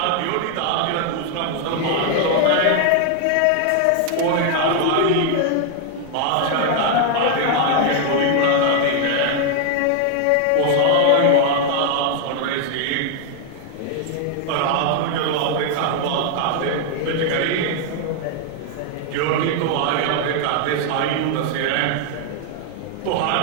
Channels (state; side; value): different; both; correlation 0.00